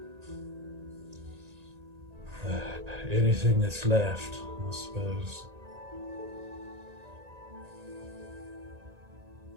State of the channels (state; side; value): late; left; 1.8 ms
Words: Anything that's left, I suppose.